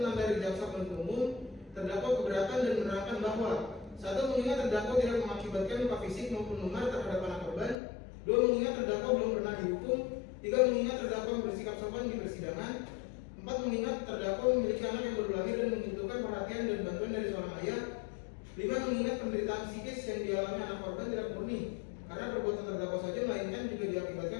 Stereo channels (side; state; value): right; drops out; at 7.8 s